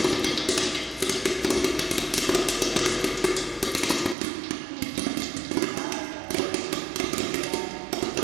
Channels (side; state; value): left; drops out; at 4.2 s